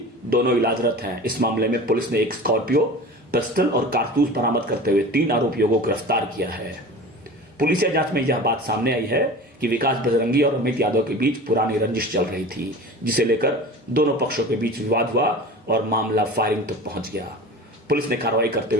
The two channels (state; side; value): normal; both; correlation 0.36